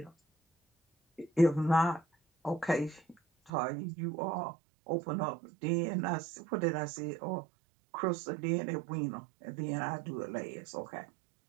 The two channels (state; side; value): drops out; left; at 3.5 s